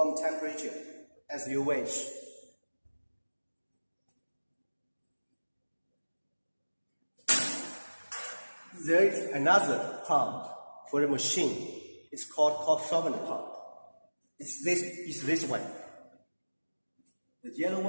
temperature, as you wish. There is another pump for the machine. It's called cold solvent pump. It's this one. The yellow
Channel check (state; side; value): inverted; both; correlation -1.00